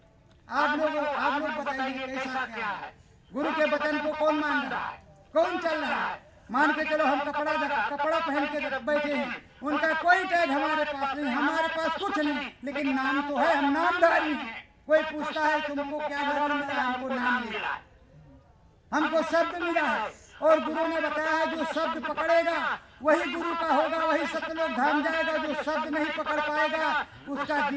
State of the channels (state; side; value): identical; both; correlation 1.00